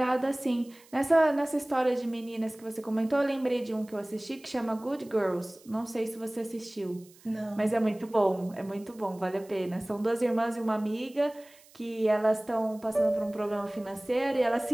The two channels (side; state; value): right; noise; hiss, 26 dB below the sound